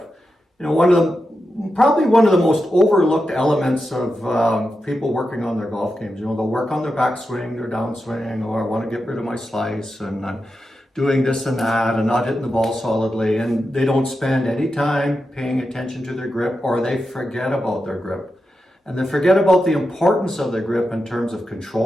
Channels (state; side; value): normal; both; correlation 0.89